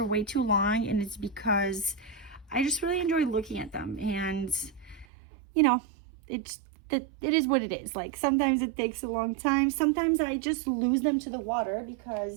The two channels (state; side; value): drops out; left; at 5.1 s